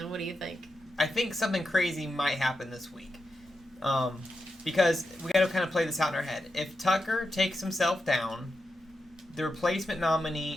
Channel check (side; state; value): both; normal; correlation 0.88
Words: What do you think? I think something crazy might happen this week. Because we got to kind of play this out in our head. If Tucker takes himself down, the replacement